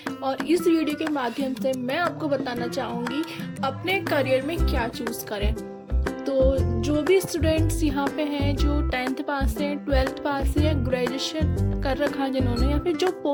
और इस वीडियो के माध्यम से मैं आपको बताना चाहूँगी अपने करियर में क्या चूज़ करें। तो जो भी स्टूडेंट्स यहाँ पे हैं जो 10th पास हैं, 12th पास है या ग्रेजुएशन कर रखा है जिन्होंने, या फिर जो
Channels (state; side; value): identical; both; correlation 1.00